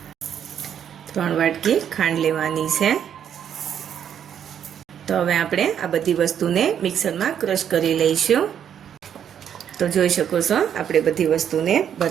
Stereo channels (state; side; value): quieter; left; 8.9 dB